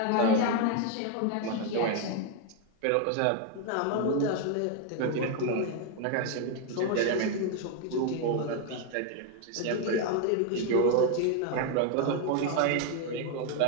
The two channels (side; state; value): both; different; correlation 0.01